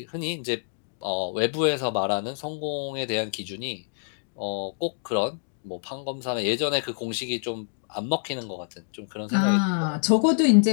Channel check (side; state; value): right; silent; digital silence